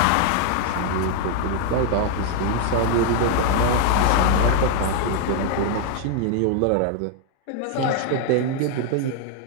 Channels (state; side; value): different; both; correlation 0.00